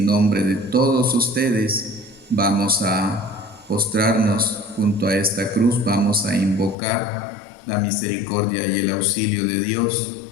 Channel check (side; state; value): right; drops out; at 6.8 s